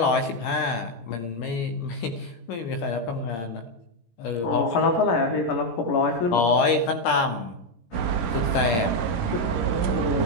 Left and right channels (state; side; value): late; right; 17 ms